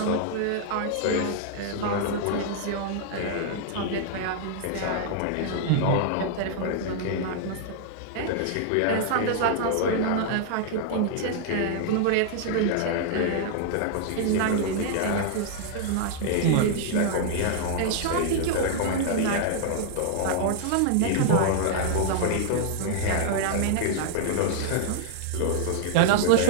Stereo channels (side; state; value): both; different; correlation -0.01